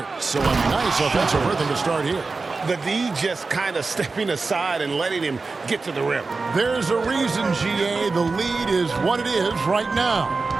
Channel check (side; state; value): left; quieter; 4.0 dB